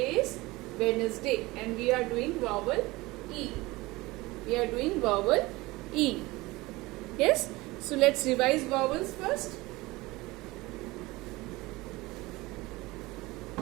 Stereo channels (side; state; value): left; quieter; 21.0 dB